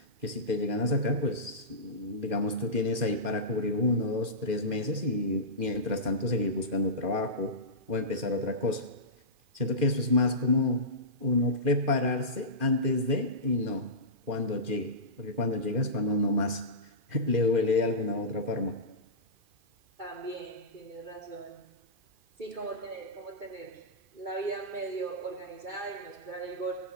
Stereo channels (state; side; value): late; left; 2.5 ms